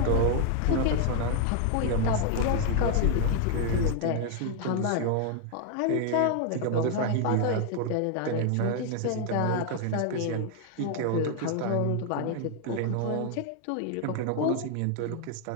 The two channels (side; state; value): both; different; correlation 0.00